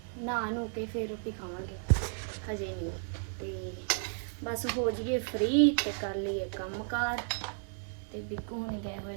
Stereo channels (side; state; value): left; silent; digital silence